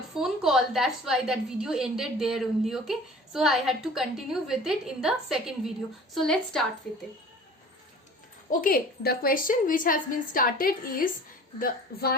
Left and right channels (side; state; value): both; normal; correlation 0.45